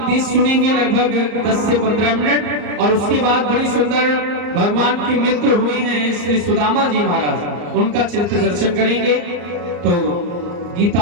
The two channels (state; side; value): late; left; 34 ms